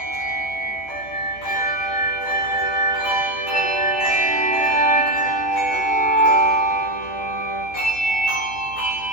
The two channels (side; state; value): right; late; 14 ms